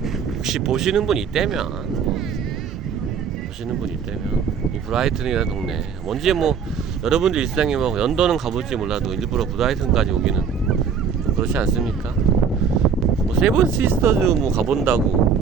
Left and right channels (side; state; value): left; quieter; 6.6 dB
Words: 혹시 보시는 분 있다면 이 브라이튼이라는 동네 뭔지 뭐 여러분들 일상에 뭐 런던은 가볼지 몰라도 일부러 브라이튼까지 오기는 그렇지 않습니까? 뭐 세븐 시스터즈 뭐